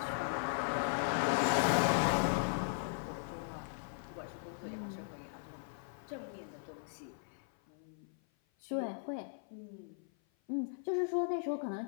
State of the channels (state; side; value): silent; right; 52 dB below the other